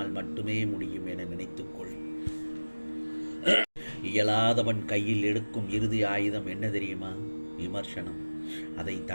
மட்டுமே முடியும் என நினைத்துக்கொள். இயலாதவன் கையில் எடுக்கும் இறுதி ஆயுதம் என்ன தெரியுமா? விமர்சனம். அதை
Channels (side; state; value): both; inverted; correlation -1.00